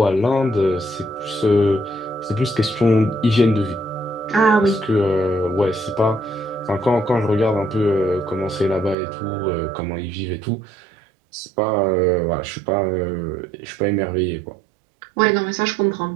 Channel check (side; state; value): left; drops out; at 9.0 s